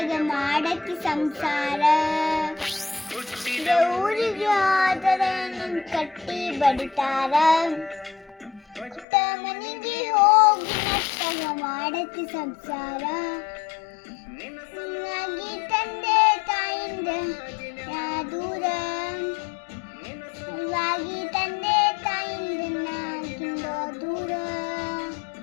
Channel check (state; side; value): drops out; right; at 9.1 s